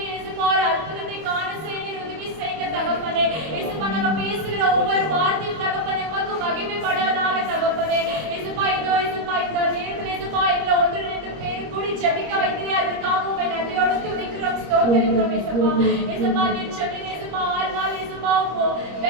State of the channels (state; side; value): late; left; 25 ms